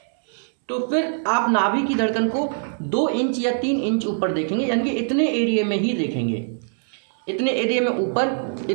तो फिर आप नाभि की धड़कन को 2 इंच या 3 इंच ऊपर देखेंगे, यानी कि इतने एरिया में ही देखेंगे, इतने एरिया में ऊपर,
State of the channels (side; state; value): left; silent; digital silence